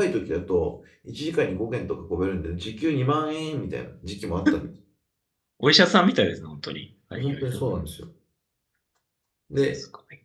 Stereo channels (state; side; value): identical; both; correlation 1.00